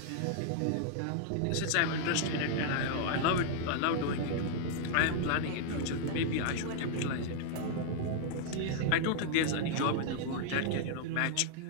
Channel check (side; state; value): both; different; correlation 0.00